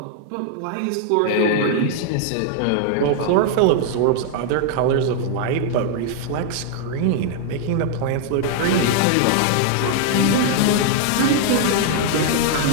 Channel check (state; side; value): different; both; correlation 0.00